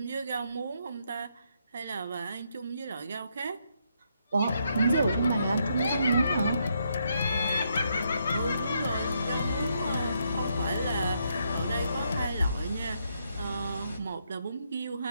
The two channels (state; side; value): inverted; both; correlation -0.77